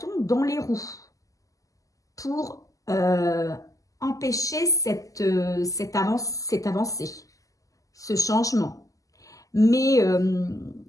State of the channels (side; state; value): right; late; 0.16 ms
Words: dans les roues pour empêcher cette avancée, ce changement. Mais